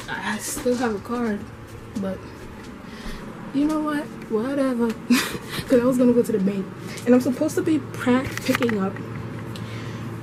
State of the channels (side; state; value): both; identical; correlation 1.00